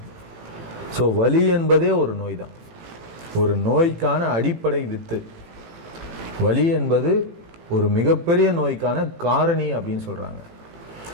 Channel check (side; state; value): left; late; 18 ms